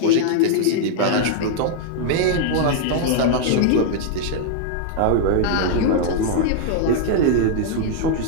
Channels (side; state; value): both; different; correlation -0.01